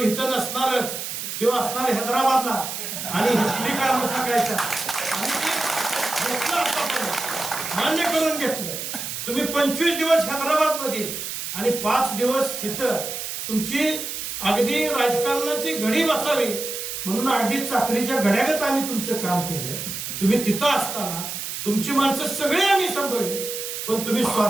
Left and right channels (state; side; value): noise; right; hiss, 6 dB below the sound